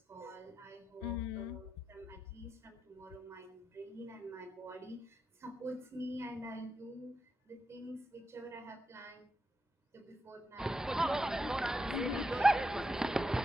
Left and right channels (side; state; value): both; normal; correlation 0.86